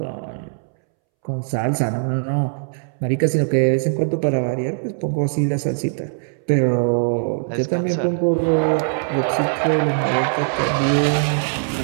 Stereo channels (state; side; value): silent; left; 65 dB below the other